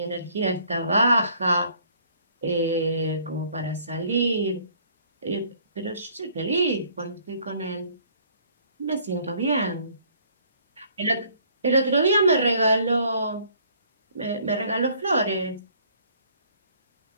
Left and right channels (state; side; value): inverted; both; correlation -0.60